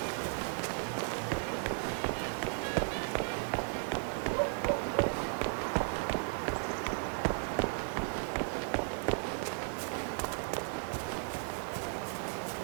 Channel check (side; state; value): left; silent; 54 dB below the other